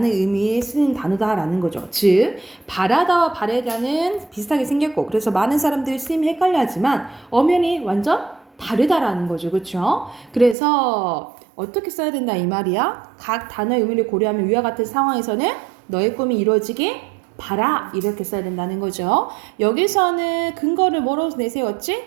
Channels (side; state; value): left; drops out; at 10.6 s